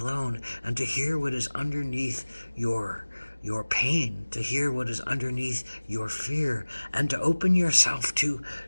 and to hear what is underneath your pain, to hear what is underneath your fear, and to open yourself to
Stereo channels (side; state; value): both; inverted; correlation -1.00